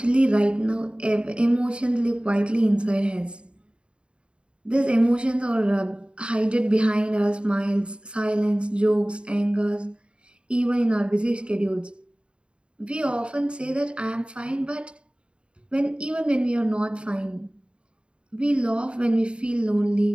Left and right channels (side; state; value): left; late; 0.054 ms